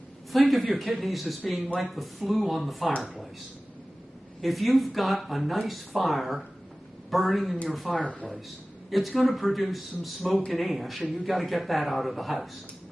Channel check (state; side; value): normal; both; correlation 0.97